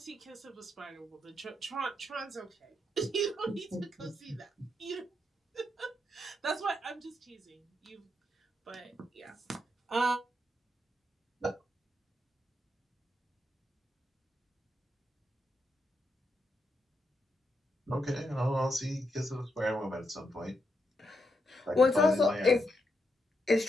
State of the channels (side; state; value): both; normal; correlation 0.82